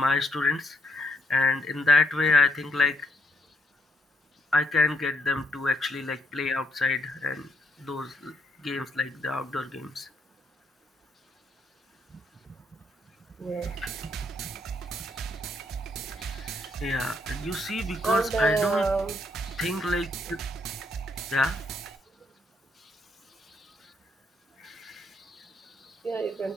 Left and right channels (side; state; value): both; normal; correlation 0.74